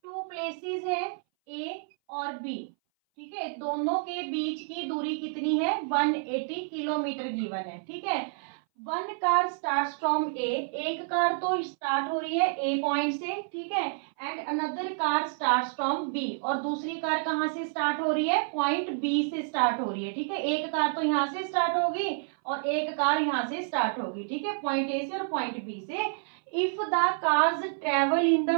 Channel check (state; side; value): silent; left; 59 dB below the other